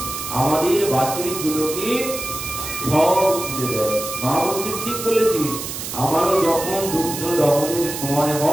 আমাদের বাছুরিগুলোকে সব খুলে দেয়। মা বলছে ঠিক বলেছিস, আমারও যখন দুগ্ধ দহনের সময়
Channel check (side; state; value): right; noise; hiss, 7 dB below the sound